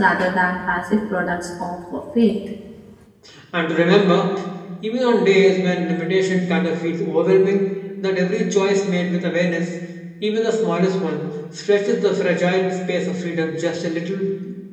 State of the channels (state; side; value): identical; both; correlation 1.00